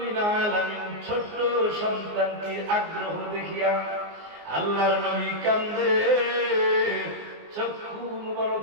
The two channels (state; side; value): late; left; 19 ms